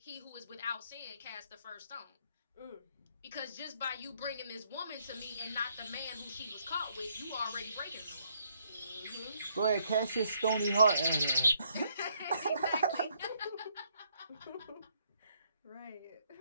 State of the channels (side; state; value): both; inverted; correlation -0.70